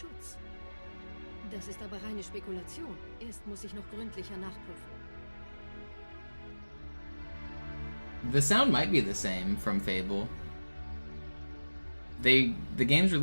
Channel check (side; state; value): both; inverted; correlation -1.00